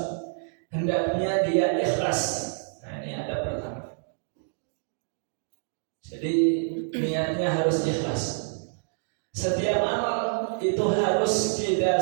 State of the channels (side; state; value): left; silent; digital silence